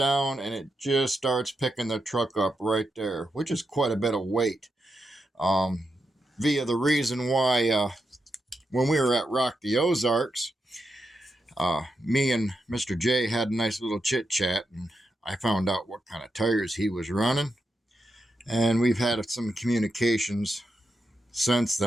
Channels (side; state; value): both; normal; correlation 0.86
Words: and it just starts picking the truck up right there, which is quite a bit of weight. Via the reason why when we were at Rock the Ozarks, me and Mr. J had a nice little chit chat, and I found out what kind of tires he was running. And we've had some communications since